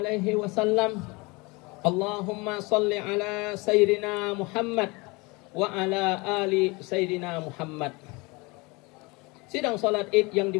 wasallam. Allahumma salli ala sayyidina Muhammad wa ala ali sayyidina Muhammad. Sidang salat Id yang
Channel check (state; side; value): quieter; right; 26.0 dB